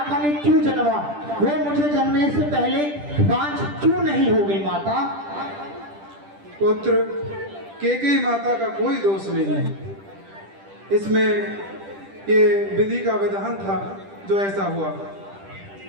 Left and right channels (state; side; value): late; left; 10 ms